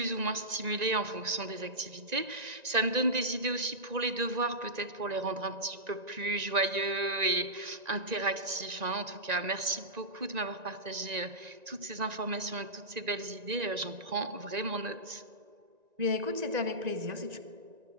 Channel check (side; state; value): left; late; 1.9 ms